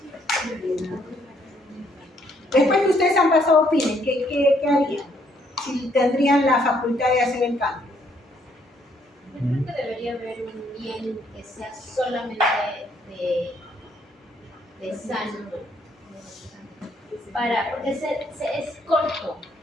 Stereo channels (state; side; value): normal; both; correlation 0.69